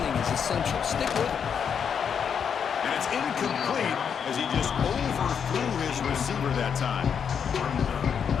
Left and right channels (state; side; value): quieter; right; 7.3 dB